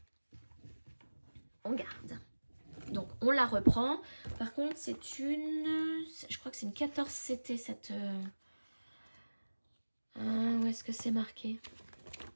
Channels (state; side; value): inverted; both; correlation -1.00